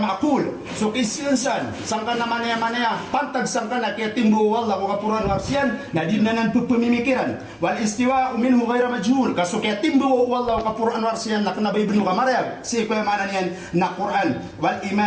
so kisinsan sangka naman ya pantag sangka na akyating duwo wallah ko kapuruan warsyan na di nanan pupamimikiran wal istiwa minhu ghayra majhul kaso kyating duwo wallah ko Quran warsiyan na kanabay benu kamarayag si kuya manan yan na Quran wal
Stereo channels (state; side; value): identical; both; correlation 1.00